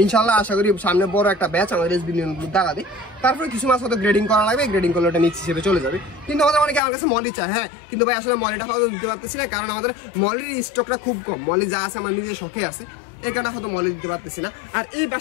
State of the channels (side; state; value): right; drops out; at 6.8 s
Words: ইনশাল্লাহ আশা করি সামনে বড় একটা ব্যাচ আমাদের এসবি নিয়ন ব্লু দেখা দিই। তারপরে কিছু মাছ হয়তো গ্রেডিং করা লাগবে, গ্রেডিং করলে ওটা মিক্স হিসেবে চলে যাবে। কিন্তু আমাদের অনেকে আমার কাছে মলি চায়, হ্যাঁ, কিন্তু ভাই আসলে মলিটা হয়তো দিতে পারতেছি না, কারণ আমাদের মলির স্টকটা খুব কম। মলি যা আছে আমার নিজের শখে আছে, এই কারণে হয়তো মলে দিতে পারতেছি না। আর এই